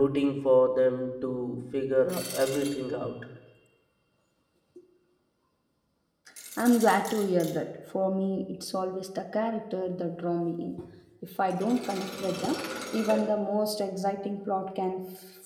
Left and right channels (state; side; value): identical; both; correlation 1.00